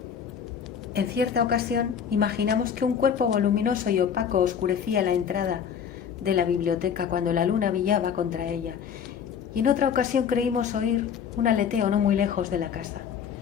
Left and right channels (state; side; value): quieter; right; 7.6 dB